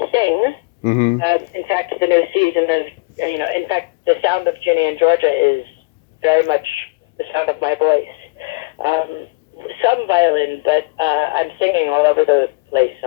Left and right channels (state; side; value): quieter; right; 26.8 dB